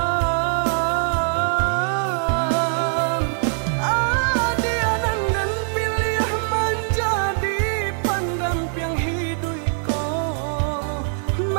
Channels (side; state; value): left; silent; digital silence